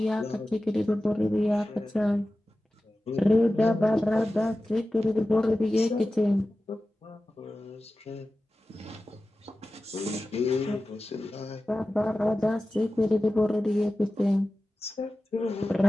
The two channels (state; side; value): normal; both; correlation 0.95